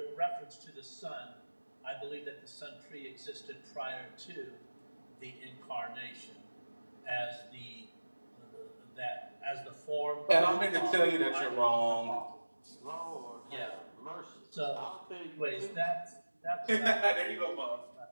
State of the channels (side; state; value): both; inverted; correlation -1.00